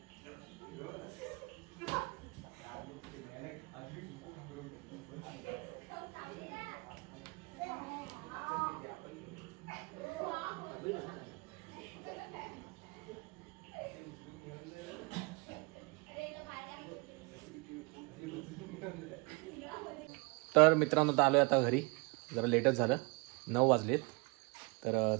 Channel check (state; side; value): quieter; left; 29.6 dB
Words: तर मित्रांनो आता आलोय आता घरी. जरा लेटच झालं 9 वाजलेत. तर